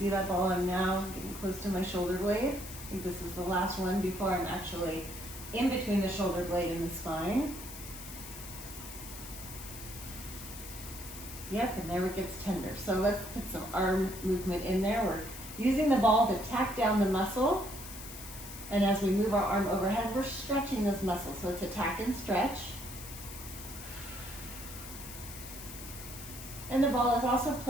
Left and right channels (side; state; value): left; noise; hiss, 12 dB below the sound